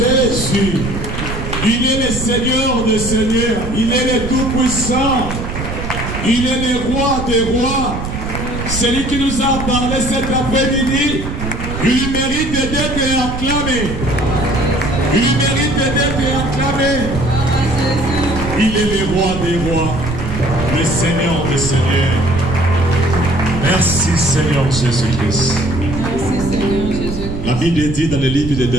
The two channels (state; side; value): noise; right; rumble, 6 dB below the sound